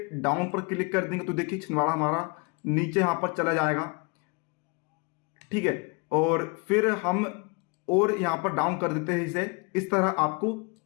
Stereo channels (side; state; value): right; quieter; 31.8 dB